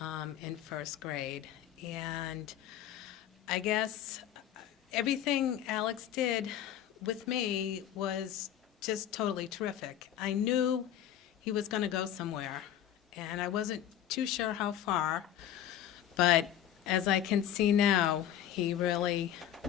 in first grade. And I guess everything Alex did with me was just totally terrific. I knew he was going to go somewhere, and I wasn't too sure how far, but as I can see now, he really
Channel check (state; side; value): quieter; right; 10.9 dB